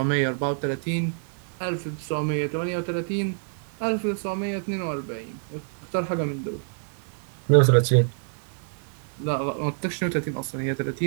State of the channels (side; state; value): left; silent; digital silence